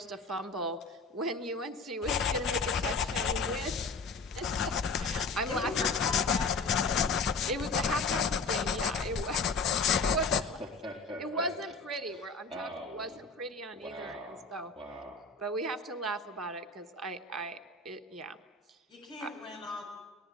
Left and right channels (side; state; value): right; quieter; 3.9 dB